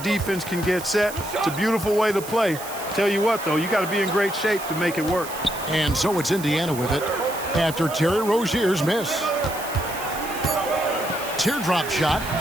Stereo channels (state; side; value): noise; right; hiss, 12 dB below the sound